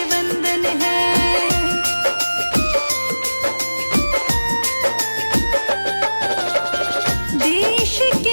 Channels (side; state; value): both; inverted; correlation -1.00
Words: वंदन है। देश